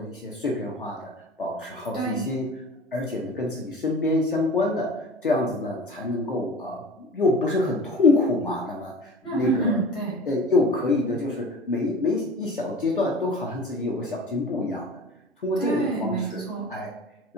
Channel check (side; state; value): both; normal; correlation 0.39